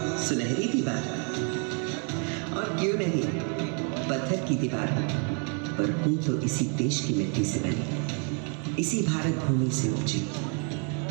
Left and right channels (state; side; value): quieter; left; 39.7 dB